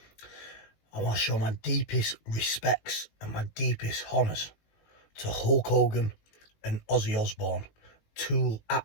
I want to show my deepest respects and my deepest honours to Hulk Hogan and Ozzy Osbourne. Two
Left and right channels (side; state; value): right; late; 18 ms